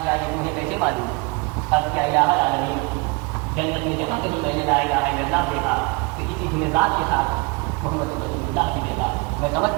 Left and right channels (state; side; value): quieter; left; 28.8 dB